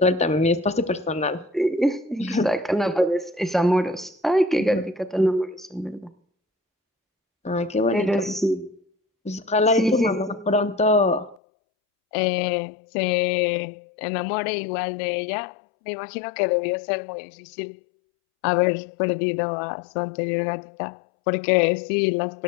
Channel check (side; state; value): right; drops out; at 11.4 s